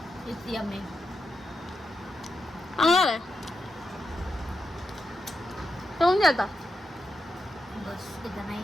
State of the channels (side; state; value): both; normal; correlation 0.87